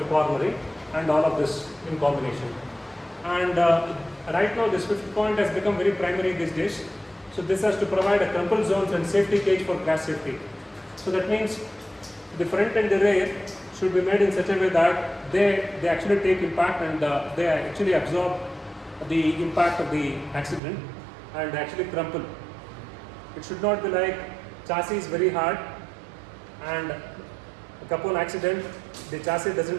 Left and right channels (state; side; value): drops out; left; at 20.6 s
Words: cornering and all of this in combination. And right now this fifth point has become very primary these days. So this has to provide a crumple zones and safety cage for crash safety. So that means the front and the rear should be made in such a way that they actually take impact and they actually absorb the impact of the accident and actually crumple. It should not be like chassis is very hard and upon accident the chassis